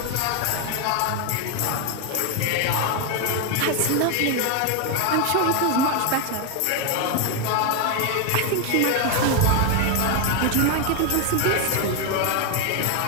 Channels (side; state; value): both; different; correlation 0.01